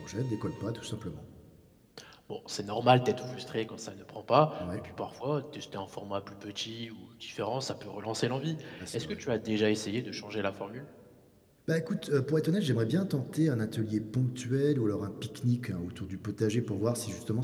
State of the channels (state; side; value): identical; both; correlation 1.00